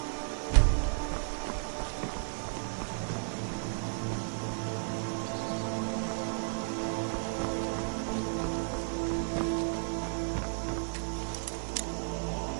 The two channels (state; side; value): silent; left; 55 dB below the other